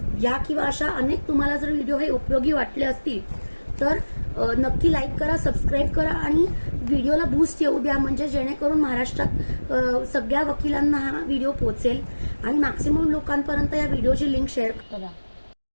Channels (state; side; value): inverted; both; correlation -1.00